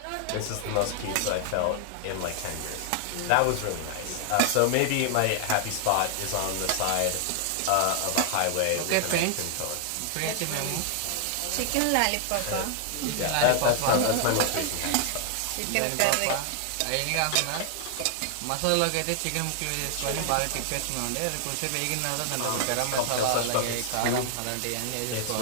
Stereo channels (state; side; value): different; both; correlation 0.00